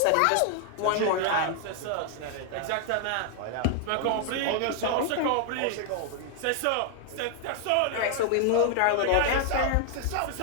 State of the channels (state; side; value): different; both; correlation 0.00